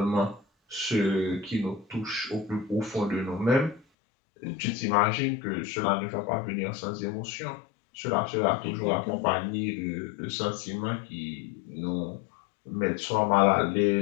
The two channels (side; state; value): right; drops out; at 3.9 s